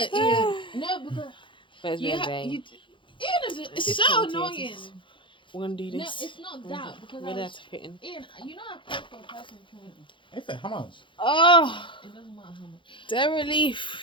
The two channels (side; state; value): right; late; 0.24 ms